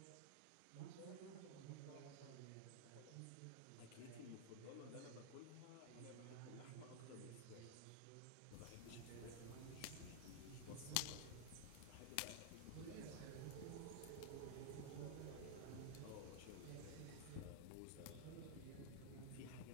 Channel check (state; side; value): different; both; correlation 0.00